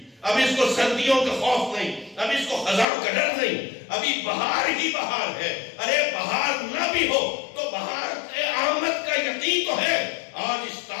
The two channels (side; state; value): right; drops out; at 2.9 s